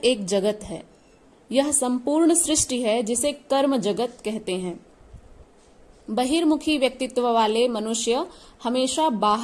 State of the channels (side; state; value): both; identical; correlation 1.00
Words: जगत है, यह संपूर्ण सृष्टि है जिसे कर्म जगत कहते हैं। बहिर्मुखी व्यक्तित्व वाले मनुष्य हमेशा